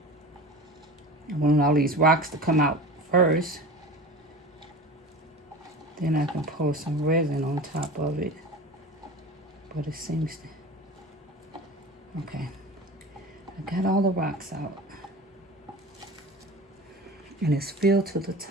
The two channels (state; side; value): normal; both; correlation 0.35